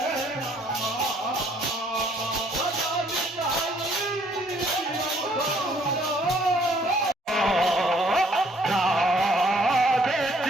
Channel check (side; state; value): both; normal; correlation 0.63